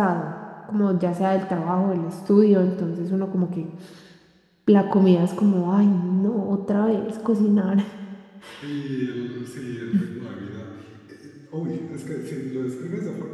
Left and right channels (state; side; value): identical; both; correlation 1.00